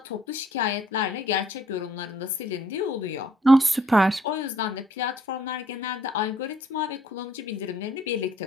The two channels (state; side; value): normal; both; correlation 0.63